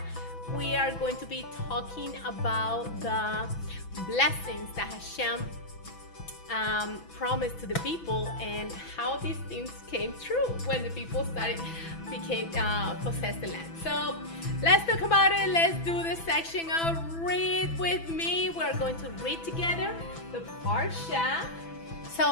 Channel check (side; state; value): right; late; 6.0 ms